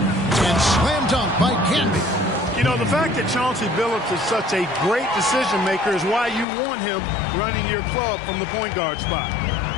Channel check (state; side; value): drops out; right; at 6.5 s